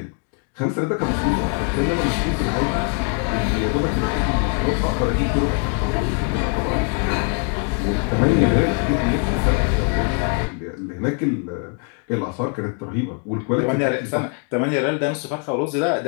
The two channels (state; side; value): quieter; right; 35.3 dB